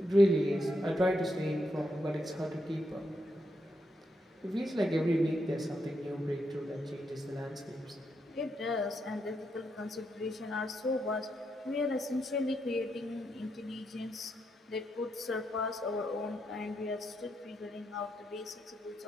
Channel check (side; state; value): both; normal; correlation 0.81